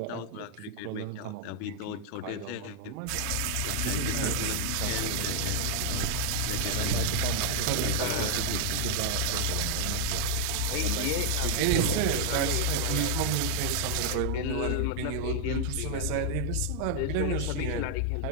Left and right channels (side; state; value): both; different; correlation 0.00